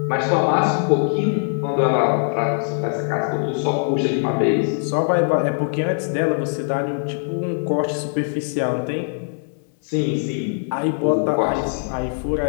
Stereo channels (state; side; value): silent; right; 65 dB below the other